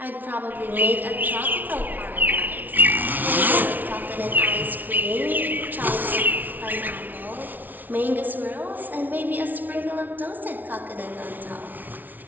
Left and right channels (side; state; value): left; late; 0.083 ms